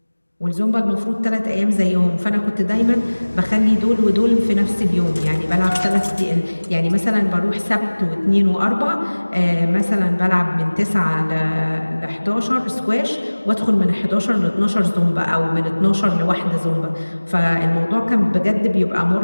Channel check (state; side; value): inverted; both; correlation -1.00